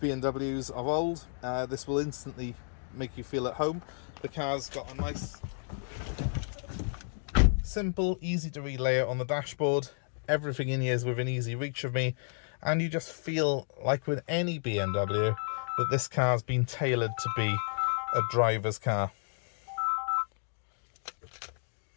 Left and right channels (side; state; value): right; silent; 57 dB below the other